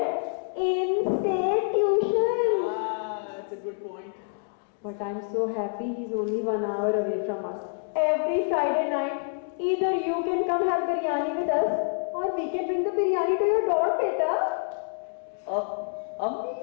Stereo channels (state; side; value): silent; right; digital silence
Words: in-state tuition. That's a good point. But I'm so happy he's only 1 hour away from us. Every Friday night, either you can come have biryani with us, or we can bring the biryani to your door, beta.